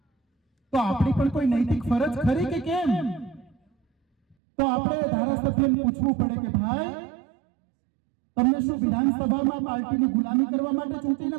તો આપણી પણ કોઈ નૈતિક ફરજ ખરી કે કેમ? તો આપણે ધારાસભ્યને પૂછવું પડે કે ભાઈ, તમને શું વિધાનસભામાં પાર્ટીની ગુલામી કરવા માટે ચૂંટીને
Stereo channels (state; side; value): drops out; left; at 4.4 s